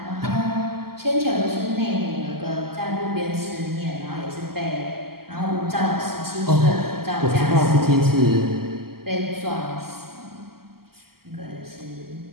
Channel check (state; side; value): late; left; 0.94 ms